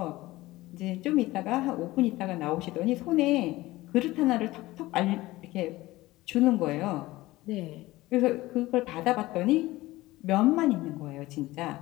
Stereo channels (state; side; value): quieter; right; 18.5 dB